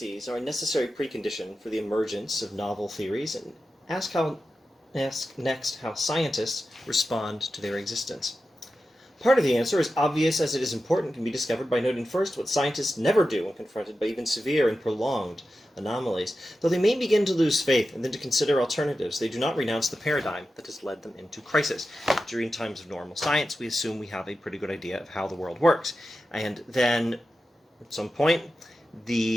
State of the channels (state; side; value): normal; both; correlation 0.92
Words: are a necessary precondition for the emergence of novel theories and ask next how scientists respond to their existence. Part of the answer, as obvious as it is important, can be discovered by noting first what scientists never do when confronted by even severe and prolonged anomalies. Though they may begin to lose faith and then to consider alternatives, they do not renounce the paradigm that has led them into crisis. During times of normal science, we assume we have a pretty good idea of how the world works. And then, at some point,